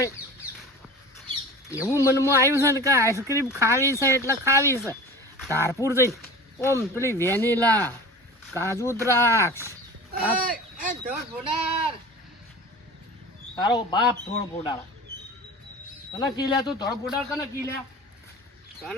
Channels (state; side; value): normal; both; correlation 0.36